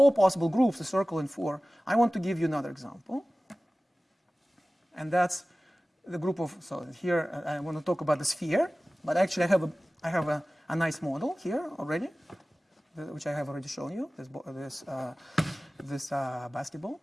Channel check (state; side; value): normal; both; correlation 0.97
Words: possible groups, a circle and 4, I want to give you another example. And that's the group of, so here I want to talk about the sphere, but actually I have a nice model here already, which I have already shown you, this basketball,